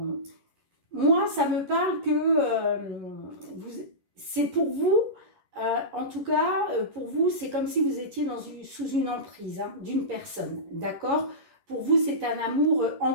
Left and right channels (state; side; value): late; left; 11 ms